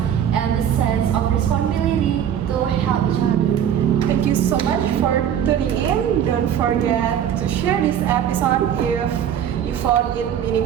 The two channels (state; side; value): quieter; left; 9.5 dB